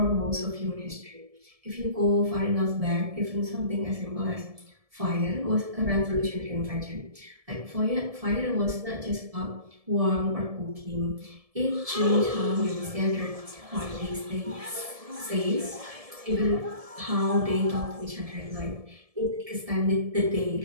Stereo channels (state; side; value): late; left; 1.7 ms